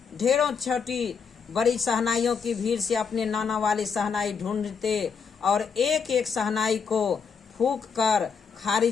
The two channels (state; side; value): quieter; right; 6.0 dB